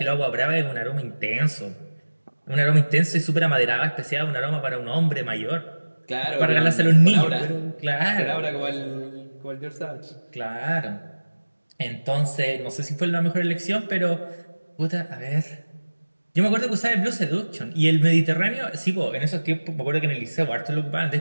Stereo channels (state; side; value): inverted; both; correlation -1.00